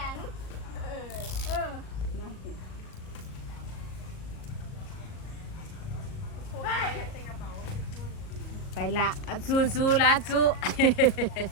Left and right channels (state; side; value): late; right; 38 ms